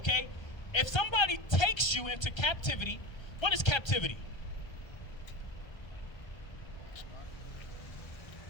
If somebody takes you into captivity, what is captivity?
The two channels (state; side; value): late; right; 1.3 ms